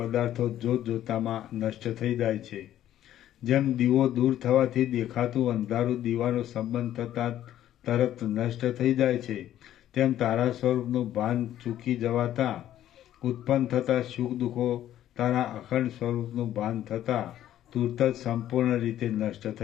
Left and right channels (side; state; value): right; quieter; 12.1 dB